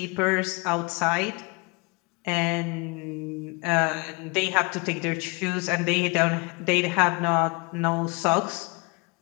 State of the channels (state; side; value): quieter; right; 28.5 dB